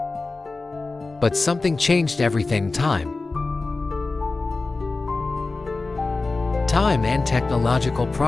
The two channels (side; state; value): right; quieter; 3.6 dB